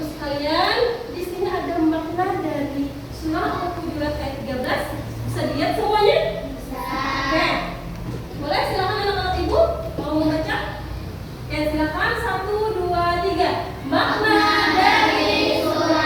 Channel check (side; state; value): both; identical; correlation 1.00